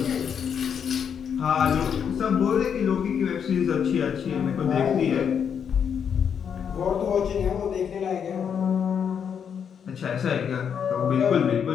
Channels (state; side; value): quieter; right; 7.6 dB